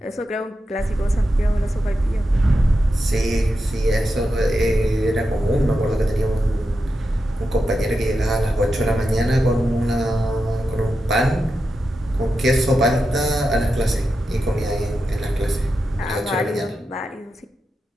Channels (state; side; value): normal; both; correlation 0.89